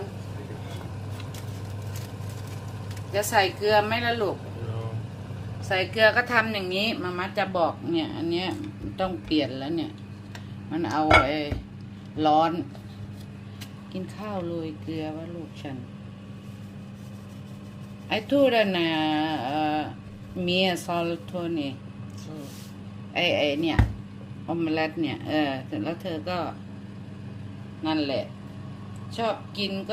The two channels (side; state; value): both; identical; correlation 1.00